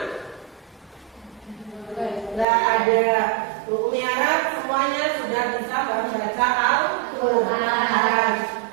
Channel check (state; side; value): drops out; left; at 2.5 s